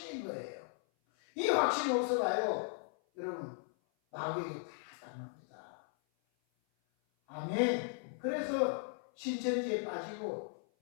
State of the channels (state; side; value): silent; right; 53 dB below the other